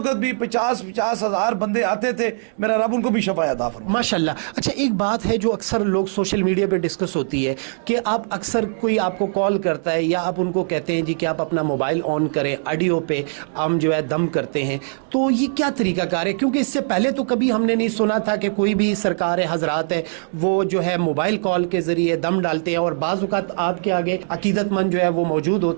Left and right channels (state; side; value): silent; left; digital silence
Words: بھی 50 ہزار بندے آتے تھے. میرا رب ان کو بھی شفا عطا فرمائے. ماشاءاللہ. اچھا ایک بات ہے جو اکثر لوگ سوشل میڈیا پہ ڈسکس ہوتی ہے کہ آپ اکثر کوئی آپ کو کال کرتا ہے یا آپ ان کو کہتے ہیں جی کہ آپ اپنا موبائل آن کریں, آڈیو پہ ہم جو ہے دم کرتے ہیں, تو یہ کیا طریقہ کار ہے؟ کیونکہ اس سے پہلے تو کبھی ہم نے نہیں سنا تھا کہ کوئی بھی سرکار حضرات ہے وہ جو ہے موبائل کال کے ذریعے دم ڈالتے ہیں, اور بعض اوقات آپ کے آگے عقیدت مند جو ہے وہ موجود